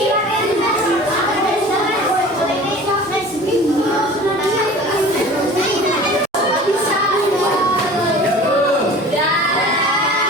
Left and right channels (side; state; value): both; normal; correlation 0.42